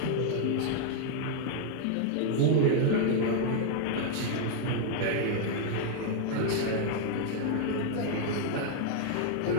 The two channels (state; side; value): different; both; correlation 0.00